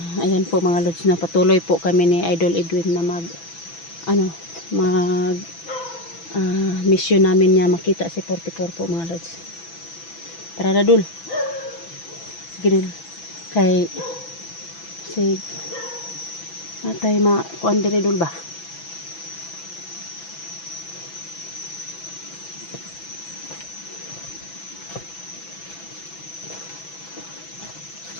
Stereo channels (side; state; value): right; late; 6.0 ms